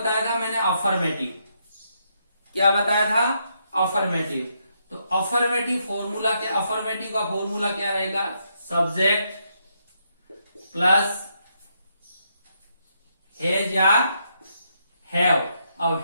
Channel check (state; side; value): inverted; both; correlation -0.77